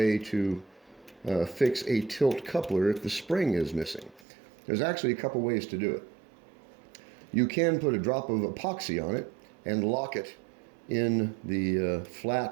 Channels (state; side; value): drops out; left; at 4.2 s